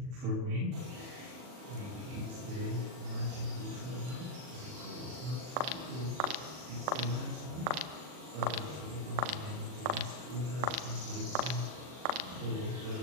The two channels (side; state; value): left; late; 40 ms